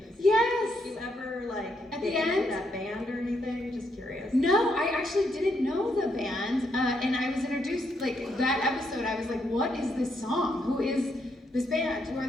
Yes. Do you ever like At get the into end? that band or anything? Just curious. No, I actually didn't know the band, and I was introduced, like, that episode, I was like, what is this song? Who is this band? Who are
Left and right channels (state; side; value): normal; both; correlation 0.77